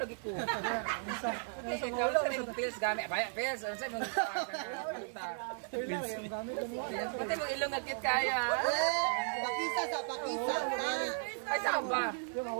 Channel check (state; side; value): silent; left; digital silence